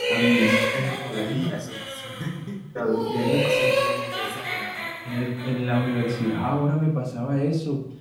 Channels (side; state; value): both; identical; correlation 1.00